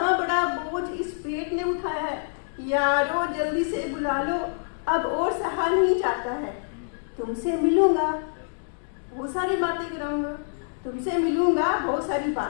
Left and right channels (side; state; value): right; silent; digital silence